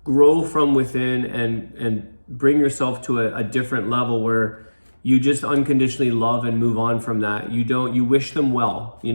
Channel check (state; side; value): inverted; both; correlation -1.00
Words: Grow from within and bring yourself to a different level where you just unconditionally love and move on from that. You wish them well,